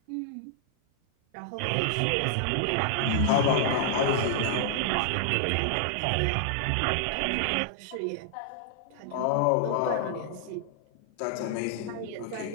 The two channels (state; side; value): different; both; correlation -0.01